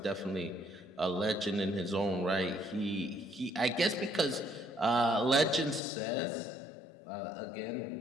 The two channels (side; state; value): right; drops out; at 5.8 s